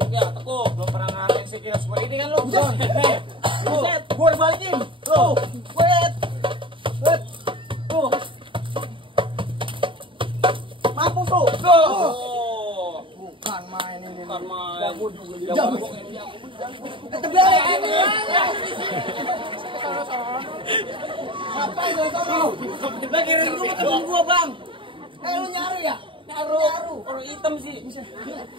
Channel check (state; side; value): late; left; 0.25 ms